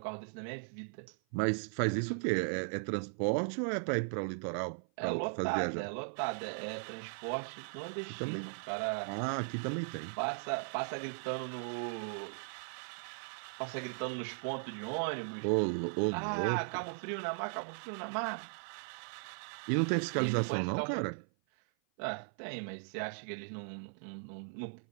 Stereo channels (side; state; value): left; silent; 53 dB below the other